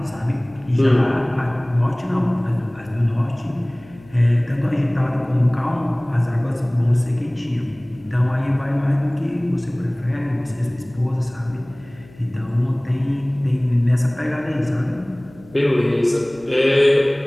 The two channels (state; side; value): noise; left; hum, 24 dB below the sound